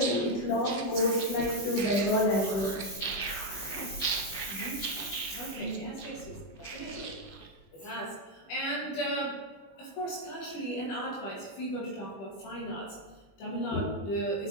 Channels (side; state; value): right; late; 20 ms